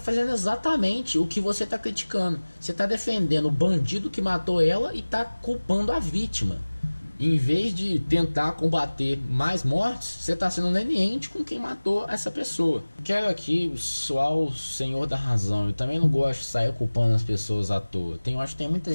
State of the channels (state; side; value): inverted; both; correlation -1.00